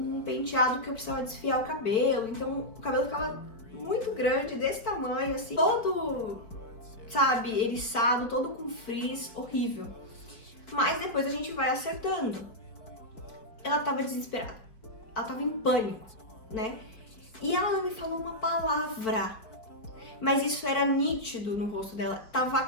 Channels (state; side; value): late; right; 4.8 ms